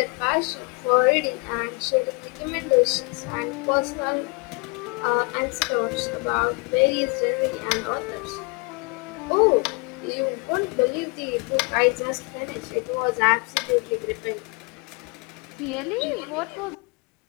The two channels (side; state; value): right; quieter; 30.7 dB